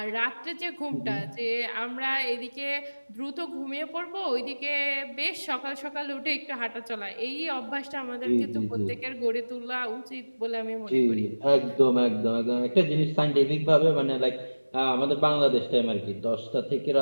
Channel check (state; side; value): inverted; both; correlation -1.00